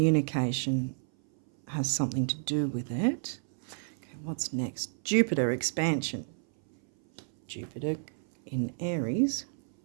has something to do with it. Okay, what's next? Jupiter expansion. Jupiter in Aries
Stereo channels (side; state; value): left; silent; 57 dB below the other